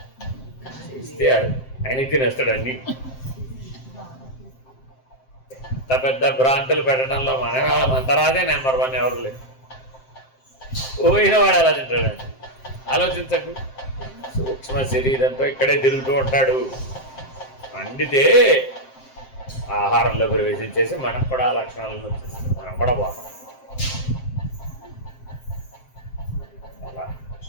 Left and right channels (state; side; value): late; right; 7.6 ms